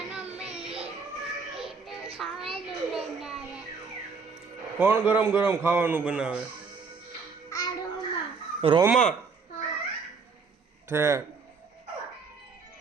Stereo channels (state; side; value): quieter; left; 5.0 dB